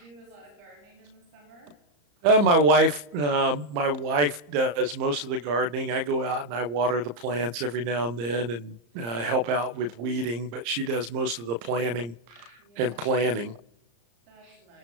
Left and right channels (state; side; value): late; left; 34 ms